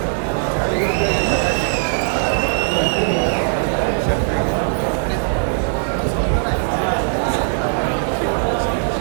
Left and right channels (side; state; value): left; silent; 66 dB below the other